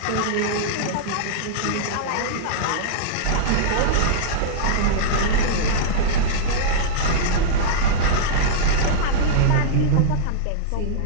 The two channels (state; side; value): different; both; correlation -0.03